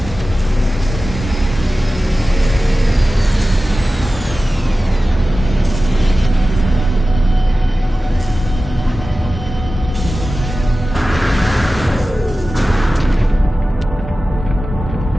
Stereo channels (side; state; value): both; normal; correlation 0.95